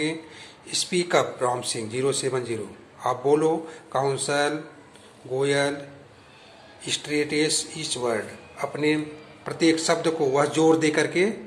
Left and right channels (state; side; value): identical; both; correlation 1.00